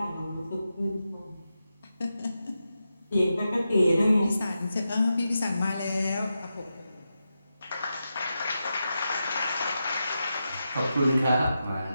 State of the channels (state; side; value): inverted; both; correlation -0.89